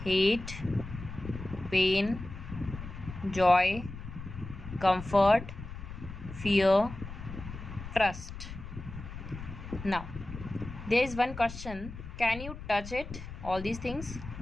hate, pain, joy, comfort, fear, trust. Now, there is one question. Can you touch it? All these things.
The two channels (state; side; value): noise; left; rumble, 11 dB below the sound